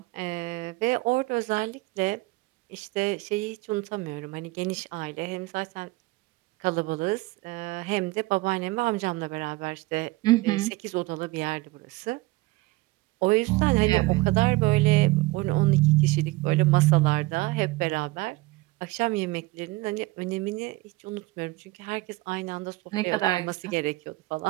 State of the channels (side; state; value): left; quieter; 21.2 dB